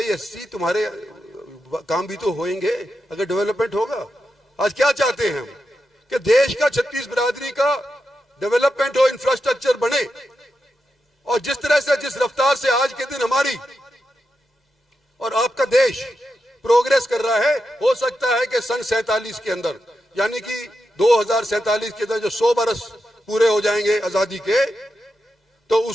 एससी तुम्हारे काम भी तो होंगे अगर डेवलपमेंट होगा। आज क्या चाहते हैं हम कि देश का 36 बिरादरी का डेवलपमेंट हो, इंफ्रास्ट्रक्चर बने। और जिस तरह से, जिस रफ्तार से आज के दिन हमारी और आपका देश प्रोग्रेस कर रहा है, हो सकता है कि सन 47 के अंदर, यानी कि 2047 के अंदर जो 100 बरस पूरे हो जाएंगे आजादी के, तो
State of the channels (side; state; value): both; normal; correlation 0.87